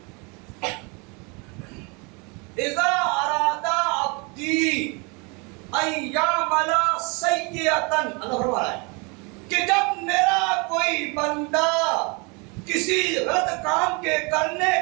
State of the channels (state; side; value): quieter; left; 30.5 dB